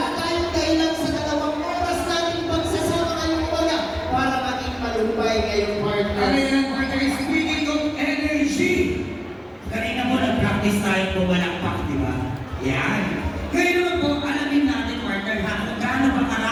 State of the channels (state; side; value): identical; both; correlation 1.00